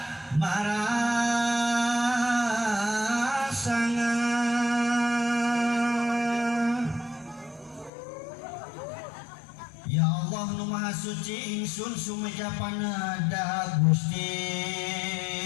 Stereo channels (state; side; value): drops out; right; at 7.9 s